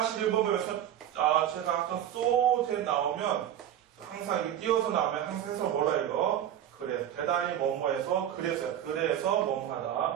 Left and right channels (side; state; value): left; quieter; 10.8 dB